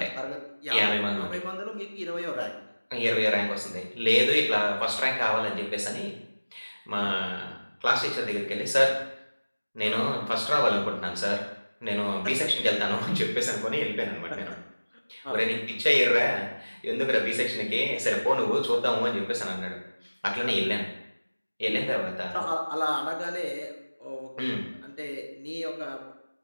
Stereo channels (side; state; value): both; inverted; correlation -1.00